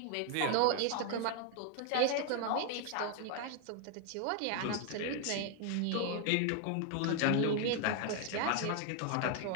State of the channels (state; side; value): different; both; correlation 0.01